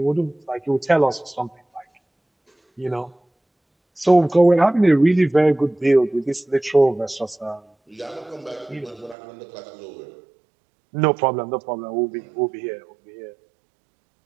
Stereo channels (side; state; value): left; drops out; at 9.2 s